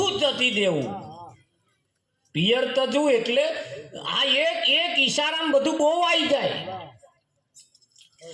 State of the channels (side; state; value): both; identical; correlation 1.00